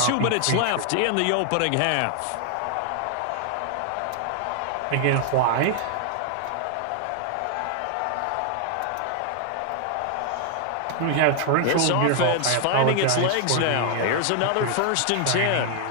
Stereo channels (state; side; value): different; both; correlation 0.00